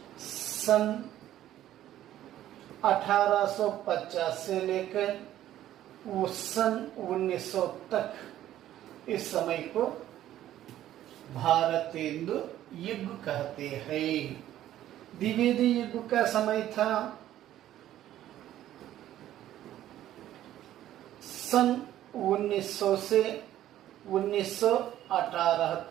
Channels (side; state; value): left; quieter; 12.8 dB